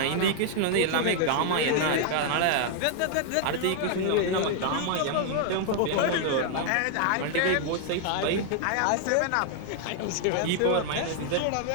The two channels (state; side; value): different; both; correlation 0.00